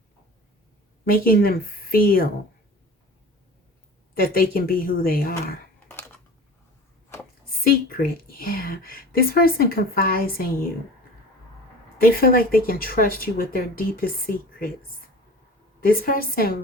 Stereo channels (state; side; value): normal; both; correlation 0.39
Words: making them feel that they can be who they are. Secret, yeah. This person confides in you. They feel like they can trust you with their deepest secrets. This person